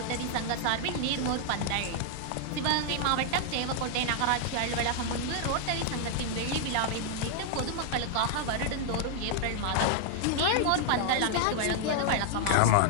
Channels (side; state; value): both; different; correlation 0.00